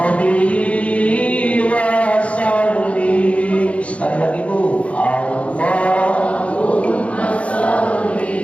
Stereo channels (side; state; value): right; late; 0.063 ms